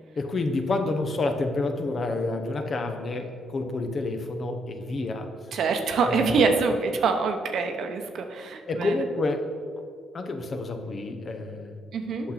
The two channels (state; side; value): normal; both; correlation 0.73